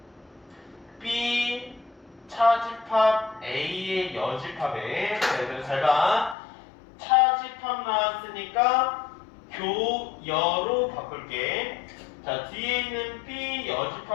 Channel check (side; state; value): right; drops out; at 6.4 s